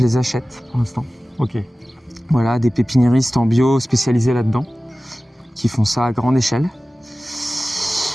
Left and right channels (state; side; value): normal; both; correlation 0.96